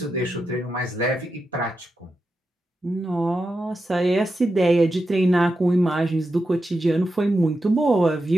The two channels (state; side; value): normal; both; correlation 0.88